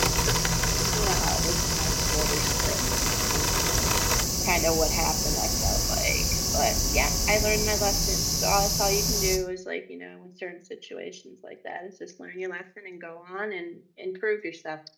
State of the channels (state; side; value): identical; both; correlation 1.00